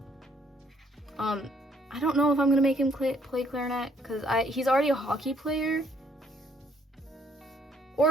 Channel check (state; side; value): normal; both; correlation 0.67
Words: I don't know if I'm gonna make him play clarinet because he's already a hockey player.